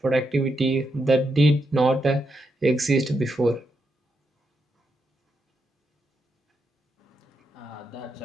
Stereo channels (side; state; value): both; normal; correlation 0.83